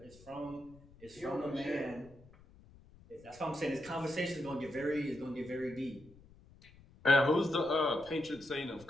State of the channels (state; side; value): noise; left; rumble, 23 dB below the sound